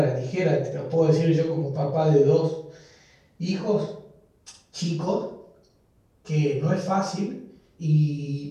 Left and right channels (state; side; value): identical; both; correlation 1.00